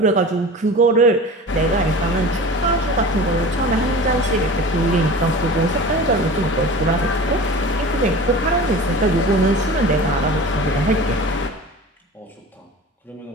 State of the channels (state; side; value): normal; both; correlation 0.36